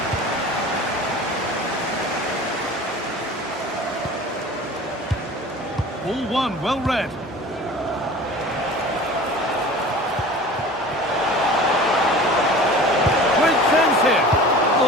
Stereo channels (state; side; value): normal; both; correlation 0.40